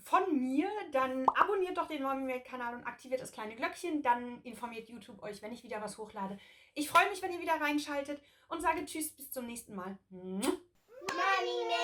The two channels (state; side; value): identical; both; correlation 1.00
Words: von mir, dann abonniert doch den MommyMade-Kanal und aktiviert das kleine Glöckchen. Dann informiert YouTube euch, wenn ich wieder was hochlade. Ich freue mich, wenn ihr wieder reinschaltet und sage Tschüss, bis zum nächsten Mal. Mommy